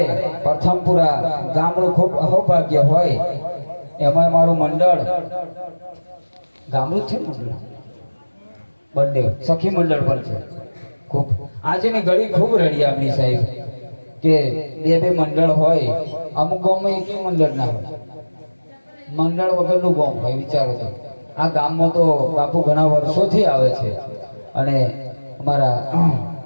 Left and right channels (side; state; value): both; inverted; correlation -1.00